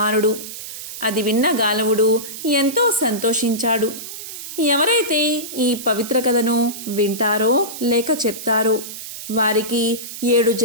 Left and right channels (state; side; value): noise; right; hiss, 10 dB below the sound